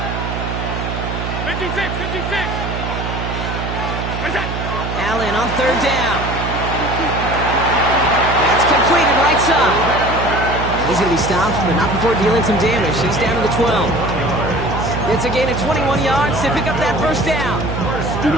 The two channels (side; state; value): right; noise; hum, 4 dB below the sound